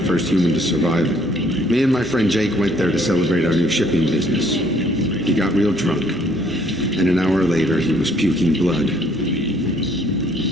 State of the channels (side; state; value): both; normal; correlation 0.63